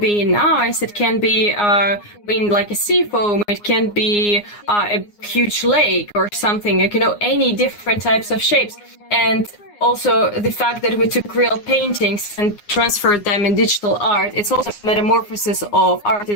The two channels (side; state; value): right; late; 9.7 ms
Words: in ice, it can be in like a sea foam, it can be a huge lake or something, like, any different types of shapes. And also the fact that we took real paintings and transferred them in digital art, it's also a metamorphosis of art